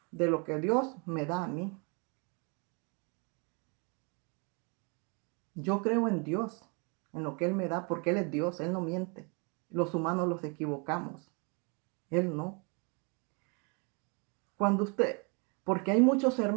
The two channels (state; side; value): quieter; left; 33.5 dB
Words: de lo que Dios me da a mí. Yo creo en Dios, en lo que Él me da, porque Él es Dios, Él no miente. Los humanos los equivocamos, Él no. Porque hay muchos